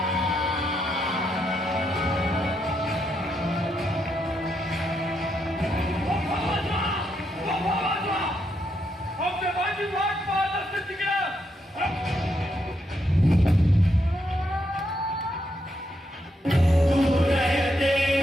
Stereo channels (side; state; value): both; normal; correlation 0.79